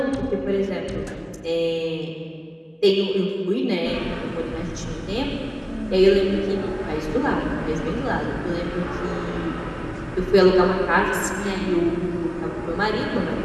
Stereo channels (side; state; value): both; identical; correlation 1.00